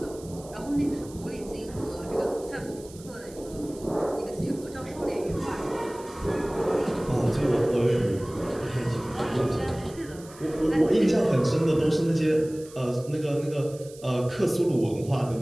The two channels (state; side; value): noise; right; hiss, 21 dB below the sound